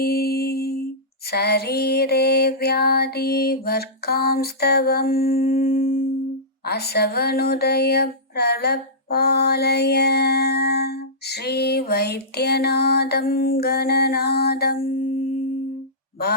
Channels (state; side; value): normal; both; correlation -0.16